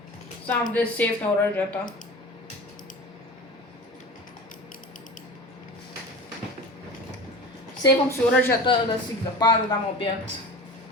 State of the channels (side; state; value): both; normal; correlation 0.34